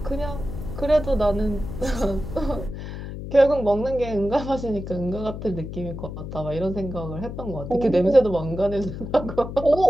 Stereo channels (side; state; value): left; noise; hum, 8 dB below the sound